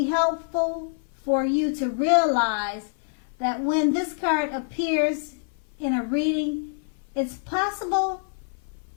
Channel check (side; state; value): right; silent; 57 dB below the other